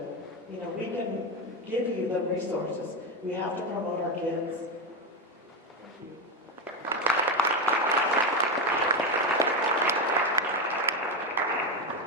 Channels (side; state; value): both; normal; correlation 0.13